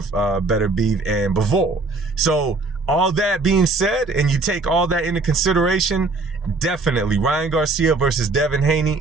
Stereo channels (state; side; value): quieter; left; 3.5 dB